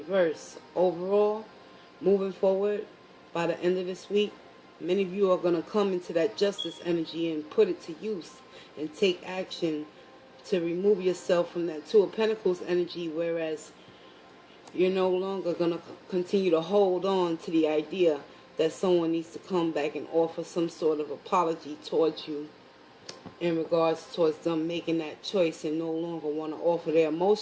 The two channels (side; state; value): both; identical; correlation 1.00